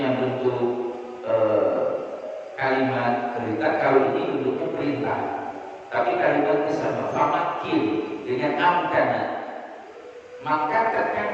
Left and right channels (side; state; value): both; identical; correlation 1.00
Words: bentuk kalimat perintah, kalau ini bentuknya perintah. Tapi kalimatnya sama, famakin dengan amkana. Maka